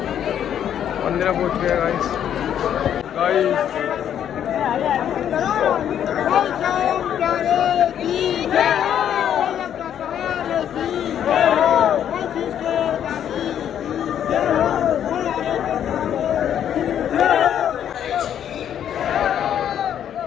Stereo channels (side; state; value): right; quieter; 9.7 dB